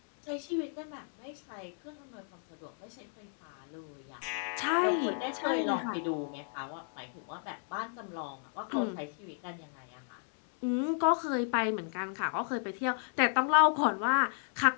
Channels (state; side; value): silent; right; 55 dB below the other